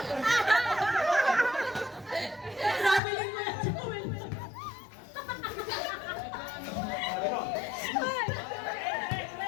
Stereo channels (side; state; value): right; drops out; at 3.0 s